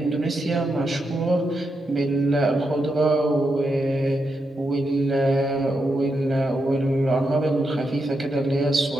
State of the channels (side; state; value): both; normal; correlation 0.84